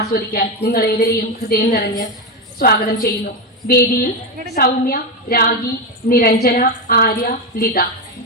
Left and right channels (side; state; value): both; normal; correlation 0.11